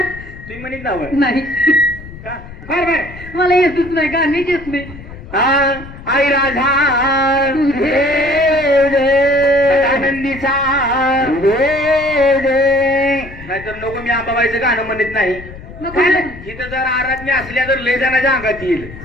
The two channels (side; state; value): left; noise; rumble, 15 dB below the sound